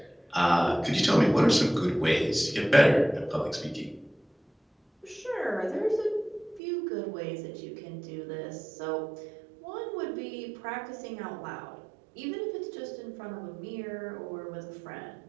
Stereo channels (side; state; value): left; drops out; at 6.6 s